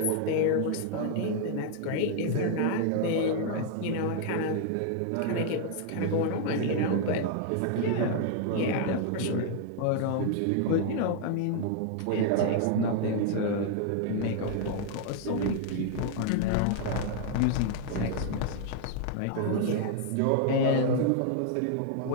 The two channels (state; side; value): different; both; correlation 0.00